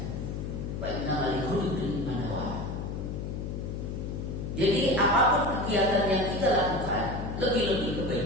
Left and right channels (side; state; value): left; noise; hum, 5 dB below the sound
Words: wa innamal likulli imrin ma nawa. Jadi apapun kegiatan yang kita lakukan, lebih-lebih